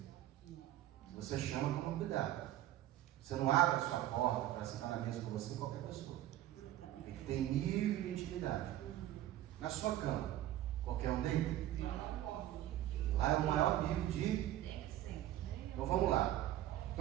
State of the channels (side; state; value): left; quieter; 13.5 dB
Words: Se você chama, toma cuidado. Você não abre a sua porta para sentar na mesa com você qualquer pessoa. Tem que ter nível de intimidade. intimidade. Na sua cama, qualquer um deita? Lá é o maior nível de... Então vamos lá.